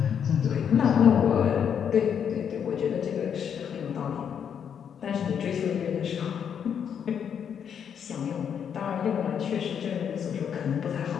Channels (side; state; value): right; quieter; 8.0 dB